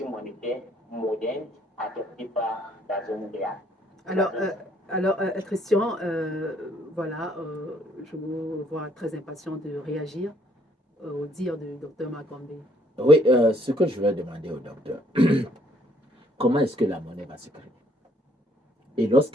monétaire moderne adoptée par la zone réelle. Alors, Christian, voilà, je vous vois très impatient de réagir au dire du docteur Makombe. Oui, ce que je vais demander au docteur, comment est-ce que la monnaie va se créer? Et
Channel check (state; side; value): normal; both; correlation 0.65